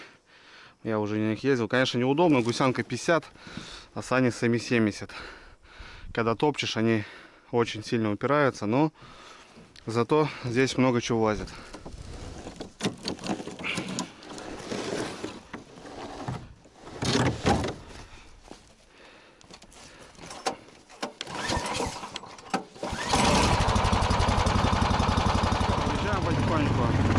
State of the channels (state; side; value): identical; both; correlation 1.00